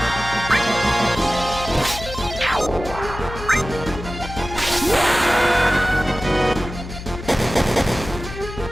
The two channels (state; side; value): noise; left; hum, 11 dB below the sound